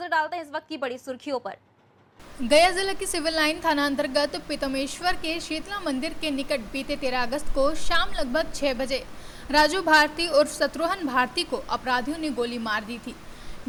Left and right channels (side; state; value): both; identical; correlation 1.00